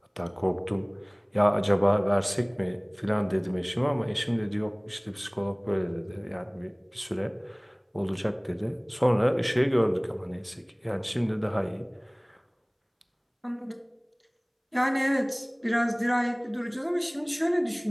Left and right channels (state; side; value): identical; both; correlation 1.00